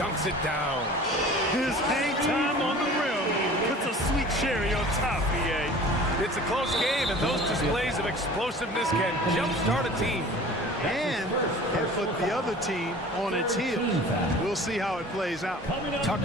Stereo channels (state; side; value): normal; both; correlation 0.43